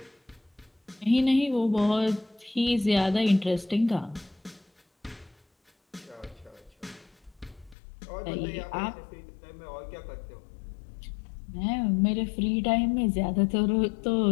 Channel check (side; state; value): right; drops out; at 7.8 s